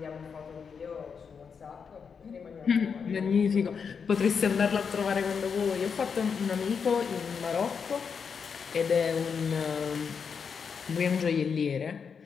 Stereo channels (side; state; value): right; quieter; 6.2 dB